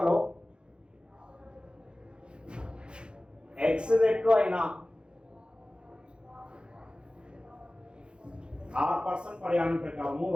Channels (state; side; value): late; left; 0.053 ms